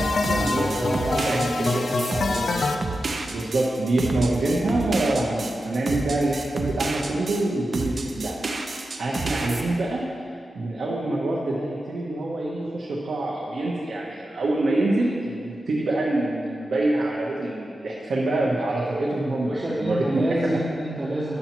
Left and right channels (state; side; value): normal; both; correlation 0.91